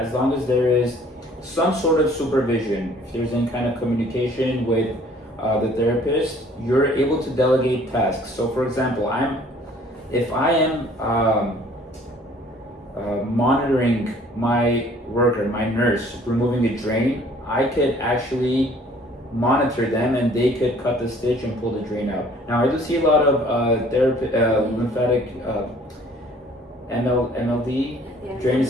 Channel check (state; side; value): normal; both; correlation 0.55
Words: long as there is some sort of supervision. If there's any kind of communication with the therapist, you're able to delegate tasks. So for example, if I am monitoring my worker, my nurse, removing a drain, I could actually monitor them and they could cut the stitch and pull the drain out. Now I do see a lot of lymphatic MLD drainage